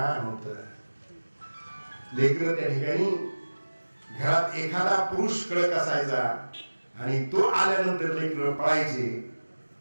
होतं. लेकरं त्या ठिकाणी घरात एखादा पुरुष कळक असायचा आणि तो आल्यानंतर लेकरं पळायचे.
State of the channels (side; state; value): both; inverted; correlation -1.00